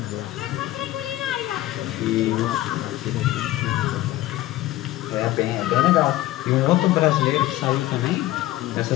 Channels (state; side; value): quieter; right; 15.9 dB